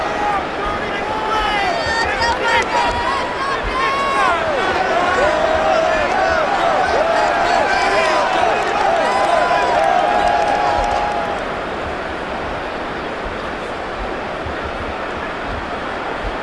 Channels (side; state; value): both; identical; correlation 1.00